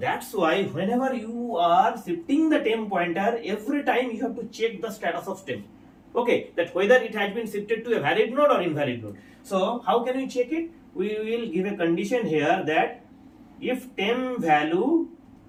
why whenever you are shifting the temp pointer, every time you have to check the status of temp. Okay, that whether it has been shifted to a valid node or invalid node. So how can we check it? We will give a condition here that if temp value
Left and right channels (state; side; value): identical; both; correlation 1.00